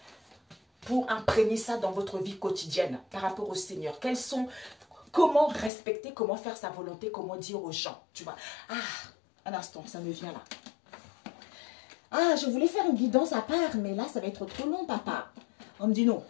pour imprégner ça dans votre vie quotidienne par rapport au Seigneur. Quels sont, comment respecter, comment faire sa volonté, comment dire aux gens, tu vois. Ah, un instant, ça me vient là. Ah, je voulais faire une guidance à part, mais là, ça va être trop long, papa. On me dit non.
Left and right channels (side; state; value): right; drops out; at 5.7 s